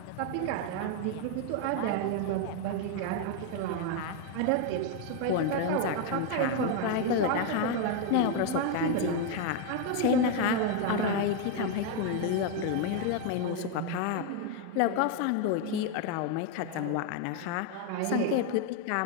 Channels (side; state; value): both; different; correlation 0.01